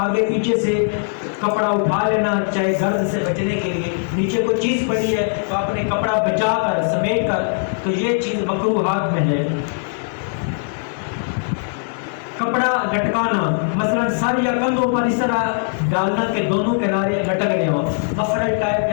پیچھے سے کپڑا اٹھا لینا، چاہے گرد سے بچنے کے لیے. نیچے کوئی چیز پڑی ہے تو آپ نے کپڑا بچا کر سمیٹ کر، تو یہ چیز مکروہات میں ہے. کپڑا لٹکانا، مثلا سر یا کندھوں پر اس طرح ڈالنا کہ دونوں کنارے لٹک رہے ہوں. مفرل ٹائپ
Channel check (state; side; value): silent; right; 66 dB below the other